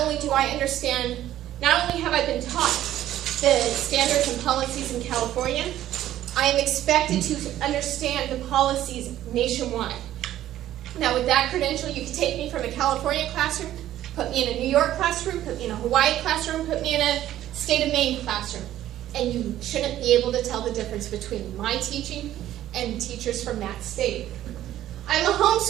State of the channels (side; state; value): left; quieter; 12.9 dB